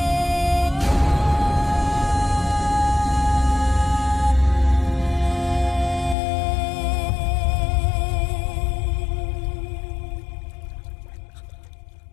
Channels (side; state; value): right; drops out; at 6.2 s